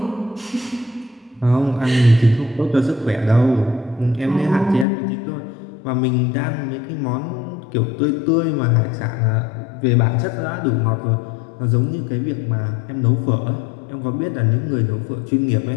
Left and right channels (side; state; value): right; drops out; at 4.9 s